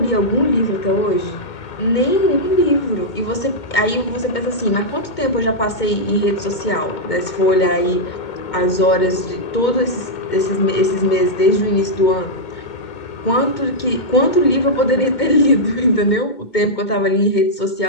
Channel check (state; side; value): late; right; 2.2 ms